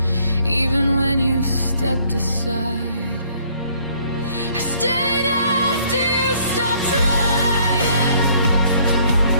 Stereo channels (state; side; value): inverted; both; correlation -0.62